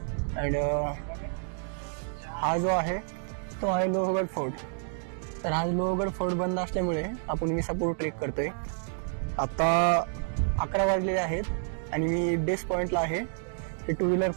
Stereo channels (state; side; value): silent; left; digital silence